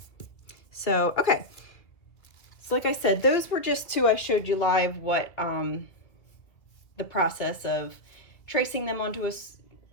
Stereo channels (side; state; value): right; late; 2.4 ms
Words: So, okay. So like I said, those were just 2 I showed you live what the process of tracing them onto